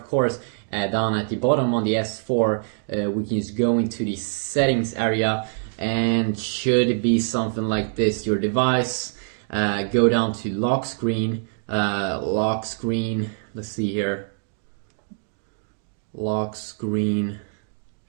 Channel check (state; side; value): silent; left; 62 dB below the other